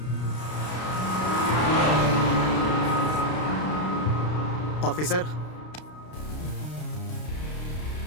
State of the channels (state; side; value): late; right; 32 ms